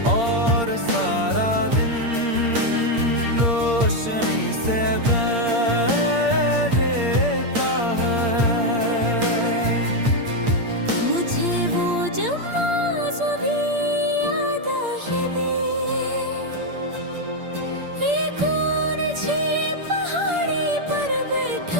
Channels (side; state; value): left; late; 8.6 ms